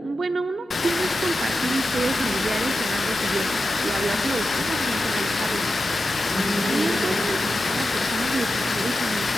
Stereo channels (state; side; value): normal; both; correlation 0.91